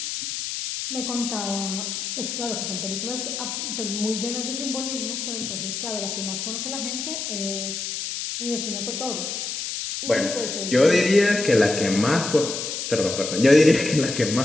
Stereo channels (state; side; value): noise; left; hiss, 4 dB below the sound